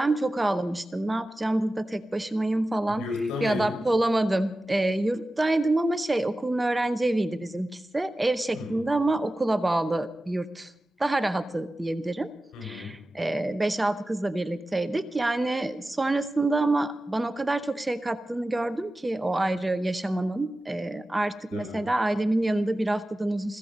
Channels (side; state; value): both; normal; correlation 0.95